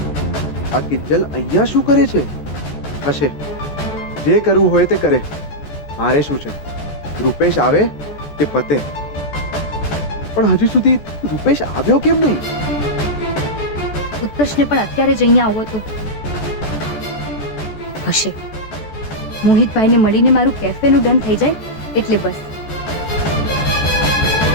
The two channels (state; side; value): late; right; 14 ms